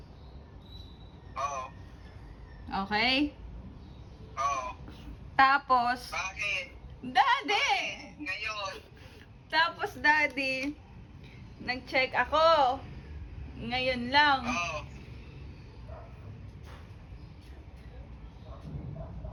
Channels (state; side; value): identical; both; correlation 1.00